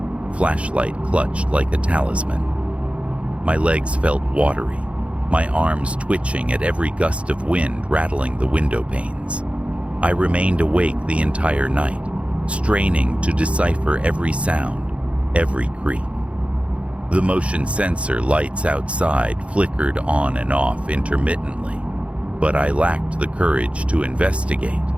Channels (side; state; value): left; late; 0.062 ms